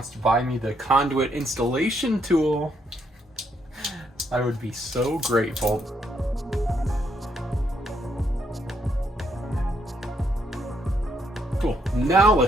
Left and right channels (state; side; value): normal; both; correlation 0.74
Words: to buy me the conduit installation tool, I would be so grateful. Cool, now